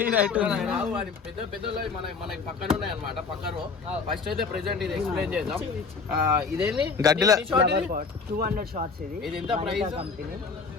పెద్ద పెద్ద మనకి పక్కన ఉన్నాయి అన్నమాట. పక్కన ఫస్ట్ అయితే ప్రెసెంట్ ఇది ఎక్స్ప్లెయిన్ చేద్దాం. ఇదేంటి గడ్డిలో 200 షాట్స్. ఇది ఎంత price? Company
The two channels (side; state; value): right; quieter; 4.9 dB